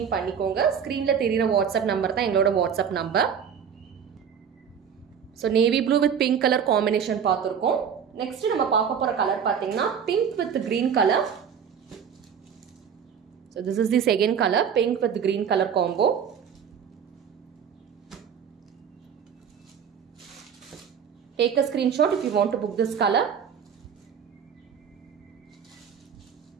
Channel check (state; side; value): quieter; left; 7.5 dB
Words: பண்ணிக்கோங்க. ஸ்கிரீன்ல தெரியுற WhatsApp நம்பர் தான் எங்களோட WhatsApp number. So navy blue with pink color combination பார்த்திருக்கோம். Next நம்ம பார்க்க போற கலர் பாத்தீங்கன்னா pink with green color. So this is the second color, pink with green color combo. Take a screenshot if you want to book this color.